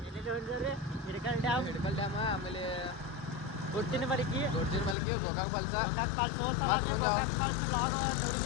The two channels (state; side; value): drops out; right; at 5.0 s